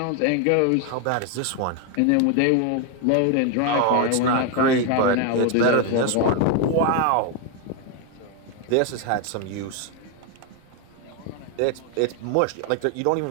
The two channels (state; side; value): different; both; correlation 0.01